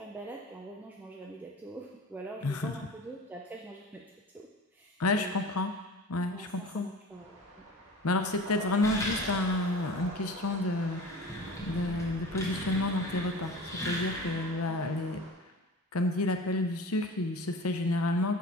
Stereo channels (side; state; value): both; normal; correlation 0.38